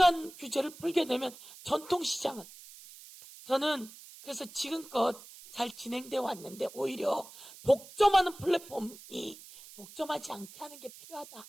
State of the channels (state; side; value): noise; right; hiss, 18 dB below the sound